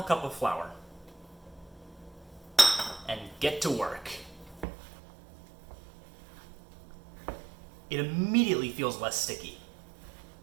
cup of flour. And get to work. It immediately feels less sticky.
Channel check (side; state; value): left; drops out; at 4.7 s